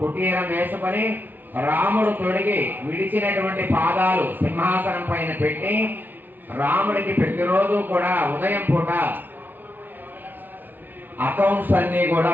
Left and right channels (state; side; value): late; left; 0.088 ms